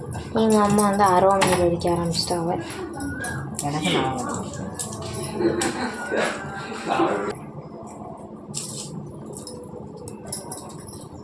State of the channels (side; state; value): both; identical; correlation 1.00